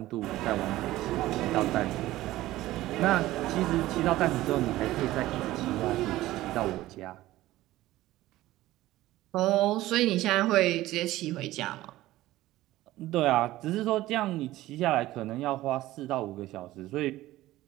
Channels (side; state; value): left; quieter; 16.3 dB